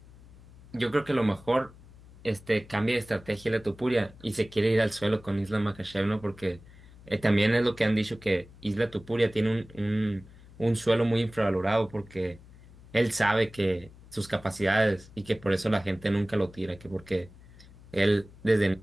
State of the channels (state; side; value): noise; left; hum, 22 dB below the sound